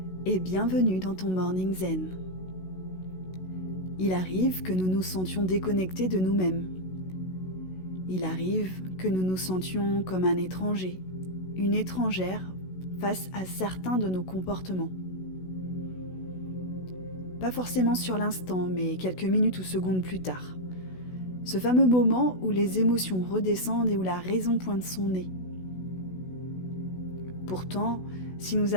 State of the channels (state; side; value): late; right; 16 ms